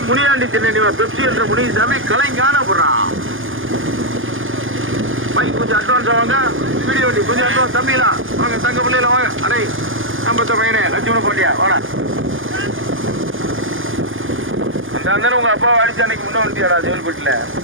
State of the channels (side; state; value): left; late; 0.58 ms